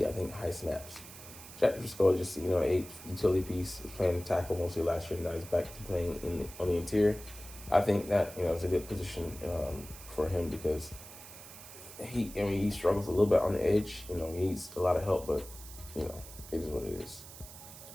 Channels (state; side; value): noise; right; hiss, 15 dB below the sound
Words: I think, high snaps. Jack Driscoll just, 8 utility piece, was playing tackle mostly last year, now he's back to playing on the interior. I think that, is a good position for him because he struggles a little bit on the edge. He needs a lot of help, but, it is what it is.